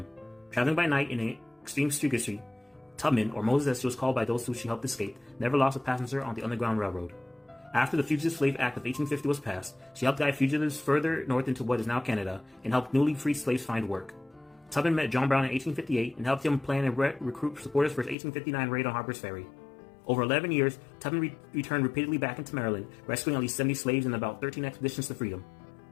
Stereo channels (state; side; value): drops out; right; at 18.2 s